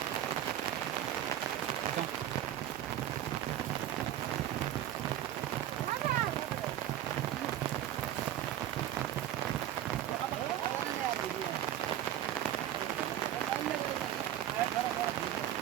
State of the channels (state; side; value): quieter; left; 12.1 dB